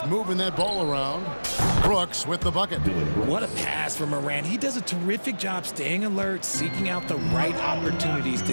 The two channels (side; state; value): both; inverted; correlation -1.00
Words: moving that ball around. Brooks with the bucket. What a pass from Morant. He does a terrific job staying alert, seeking out the right opportunities